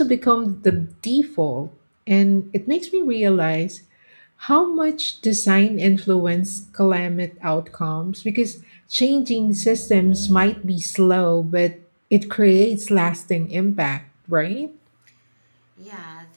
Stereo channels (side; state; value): both; inverted; correlation -1.00